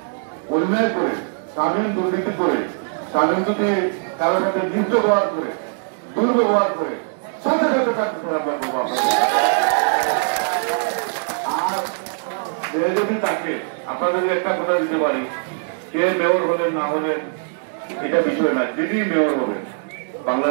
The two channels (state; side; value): silent; left; digital silence